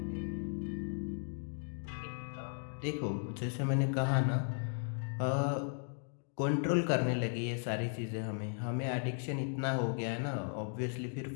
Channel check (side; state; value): right; silent; 53 dB below the other